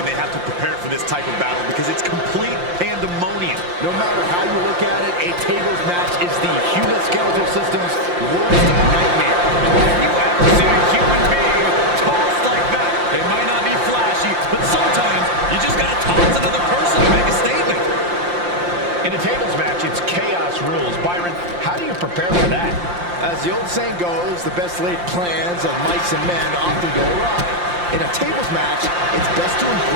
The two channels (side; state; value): left; late; 5.7 ms